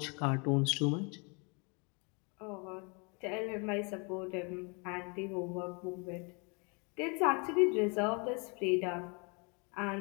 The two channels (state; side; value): quieter; right; 32.8 dB